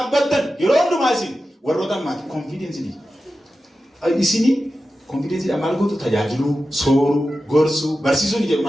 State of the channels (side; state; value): both; normal; correlation 0.92